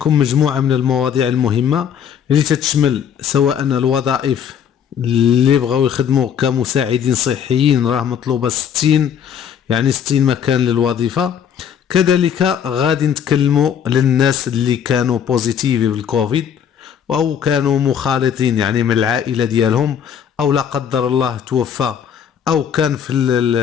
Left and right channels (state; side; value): quieter; right; 8.4 dB